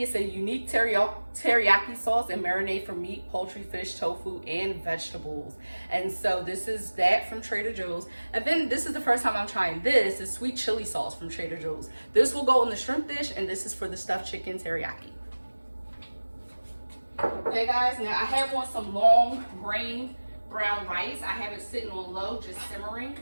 a unique teriyaki sauce and marinade for meat, poultry, fish, tofu, and vegetables. And so, this is that from Trader Joe's. And then, this is the first time I'm trying this. Is sweet chili sauce from Trader Joe's. This will go in the shrimp dish, and this is for the stuffed chicken teriyaki. Okay guys, now I have on some long grain brown rice. I have it sitting on low, just simmering.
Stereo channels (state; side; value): inverted; both; correlation -1.00